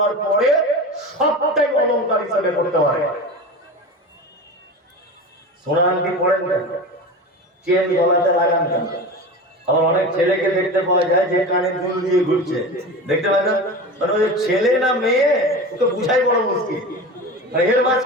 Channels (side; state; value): both; normal; correlation 0.29